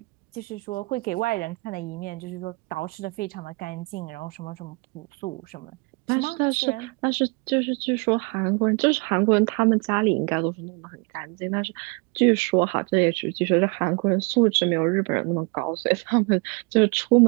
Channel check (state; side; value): quieter; left; 29.6 dB